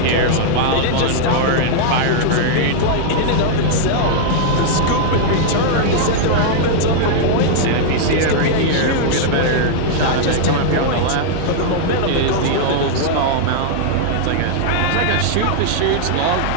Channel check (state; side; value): different; both; correlation -0.01